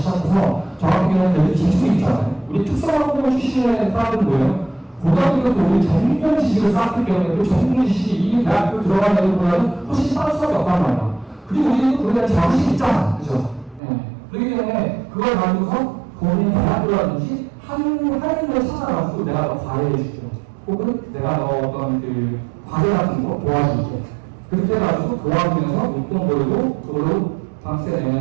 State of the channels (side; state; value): left; drops out; at 13.8 s